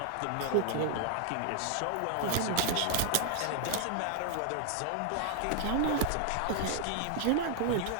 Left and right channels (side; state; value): both; different; correlation 0.00